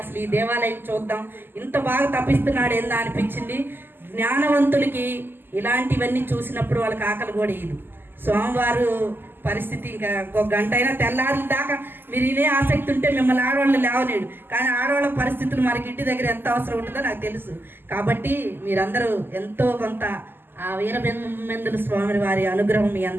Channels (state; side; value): late; left; 0.096 ms